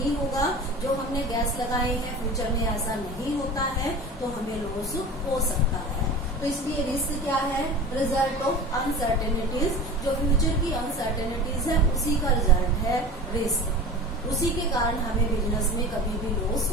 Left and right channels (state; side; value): normal; both; correlation 0.35